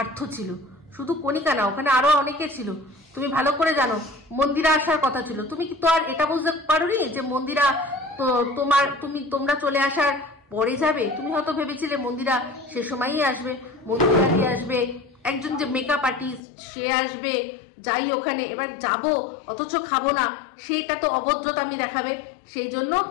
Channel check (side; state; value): right; drops out; at 16.4 s